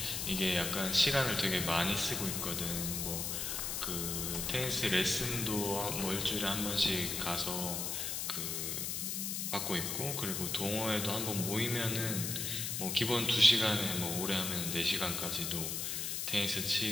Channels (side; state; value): left; noise; hiss, 2 dB below the sound